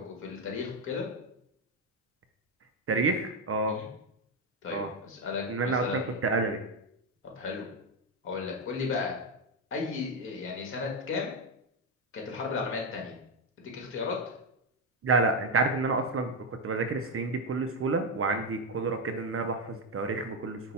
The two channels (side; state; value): both; normal; correlation 0.06